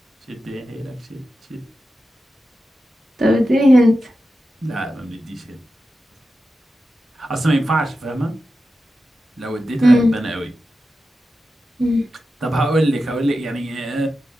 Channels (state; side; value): normal; both; correlation 0.91